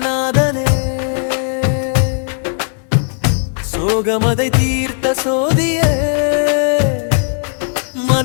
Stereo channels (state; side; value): silent; right; digital silence